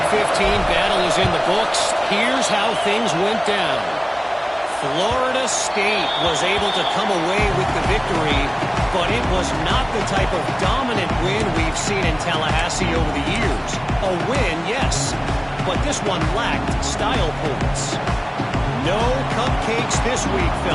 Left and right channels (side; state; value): both; identical; correlation 1.00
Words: 15 battle is in the books. Here's how things went down. Florida State was able to come away with the victory, but it was not the type of dominant win we've seen in Tallahassee over the years. A win, yes, but this one lacked style points. No cupcakes this week,